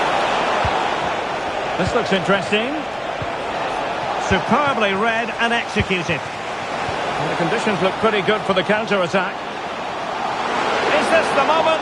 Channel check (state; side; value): identical; both; correlation 1.00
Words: This looks interesting. Superbly read and executed. And the conditions look pretty good for the counter-attack. Is this the